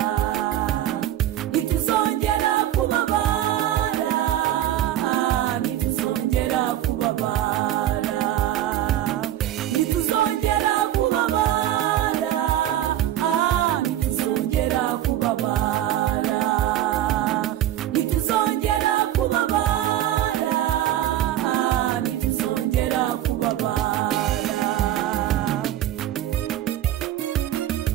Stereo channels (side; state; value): left; quieter; 12.5 dB